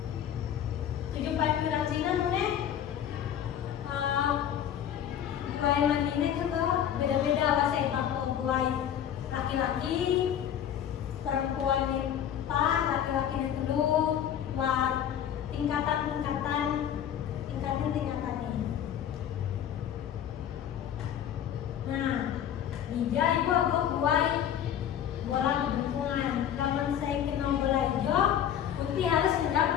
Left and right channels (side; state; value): right; quieter; 9.8 dB